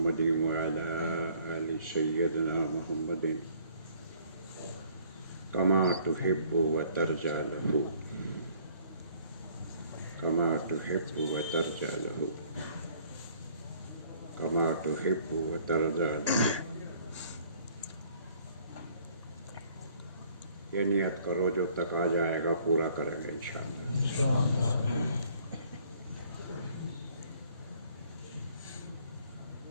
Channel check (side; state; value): both; inverted; correlation -0.59